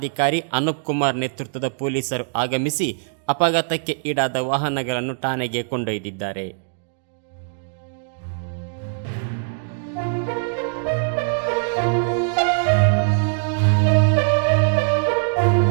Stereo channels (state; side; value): silent; left; digital silence